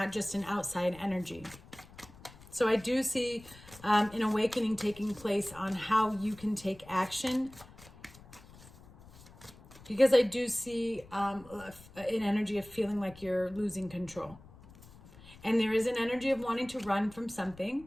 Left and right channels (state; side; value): noise; left; rumble, 21 dB below the sound